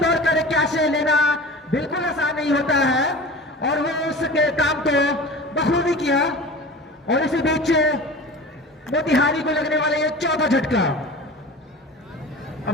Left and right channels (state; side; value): normal; both; correlation 0.36